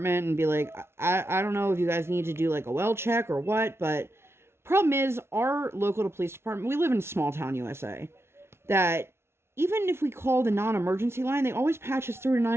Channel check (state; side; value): late; left; 0.12 ms